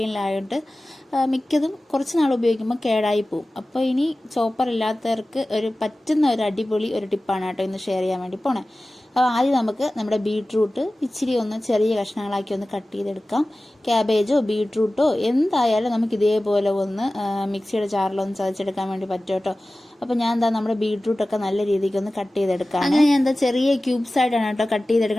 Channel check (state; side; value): normal; both; correlation 0.97